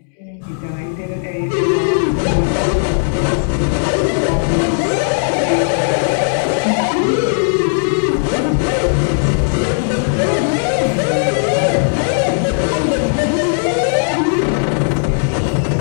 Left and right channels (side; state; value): right; silent; digital silence